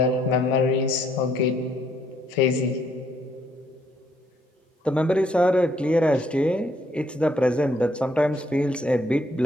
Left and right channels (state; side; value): normal; both; correlation 0.69